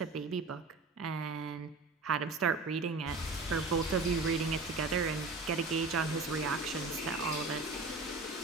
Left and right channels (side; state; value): left; quieter; 3.7 dB